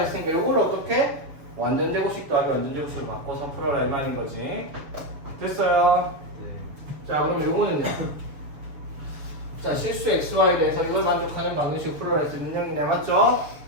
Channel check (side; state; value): left; late; 7.0 ms